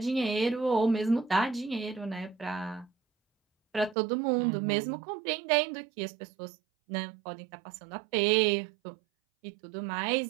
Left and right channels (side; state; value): left; drops out; at 4.0 s